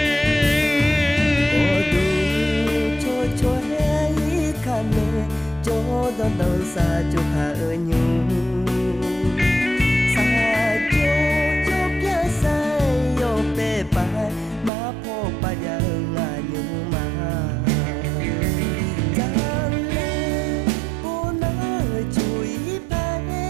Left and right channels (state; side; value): drops out; left; at 14.7 s